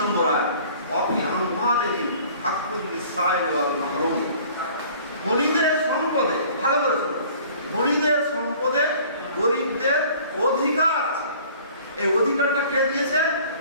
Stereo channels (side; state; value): both; inverted; correlation -0.50